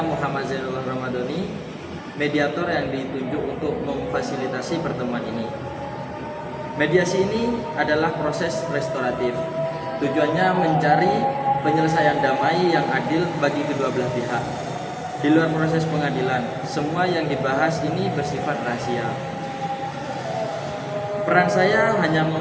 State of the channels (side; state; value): both; identical; correlation 1.00